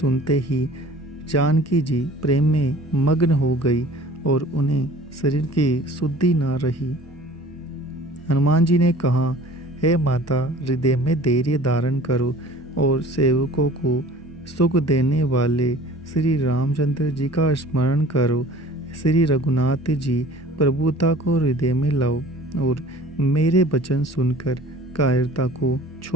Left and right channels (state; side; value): normal; both; correlation 0.46